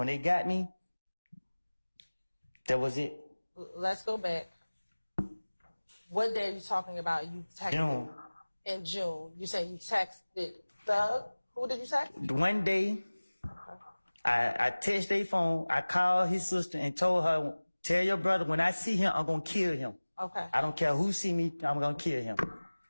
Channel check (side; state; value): both; inverted; correlation -1.00